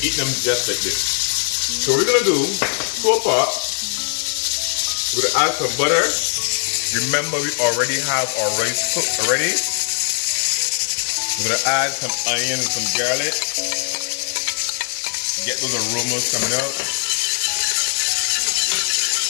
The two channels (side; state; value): right; silent; digital silence